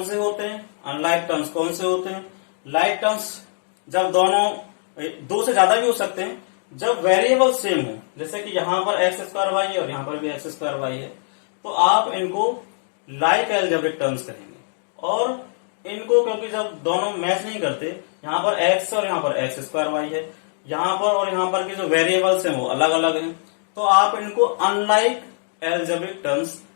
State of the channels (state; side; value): silent; right; digital silence